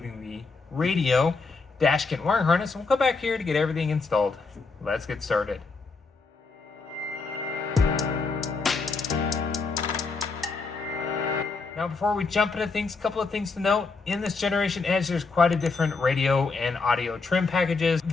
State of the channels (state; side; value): quieter; right; 4.2 dB